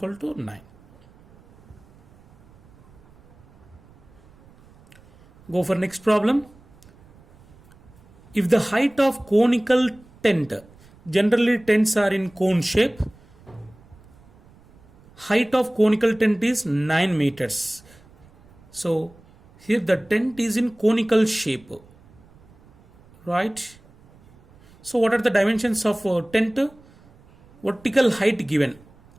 to 9. Go for next problem. If the height of conical tent, generally tents are in cone shape, height of conical tent is 9 meters. So here the tent is in conical shape, right? So what are the dimensions of tent? Vertical height given,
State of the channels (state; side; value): noise; right; rumble, 27 dB below the sound